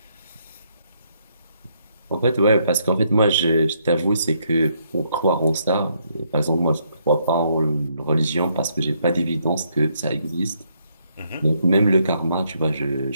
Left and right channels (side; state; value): both; inverted; correlation -0.73